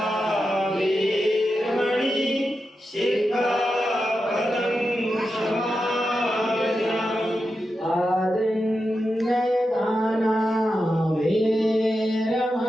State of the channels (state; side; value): normal; both; correlation 0.89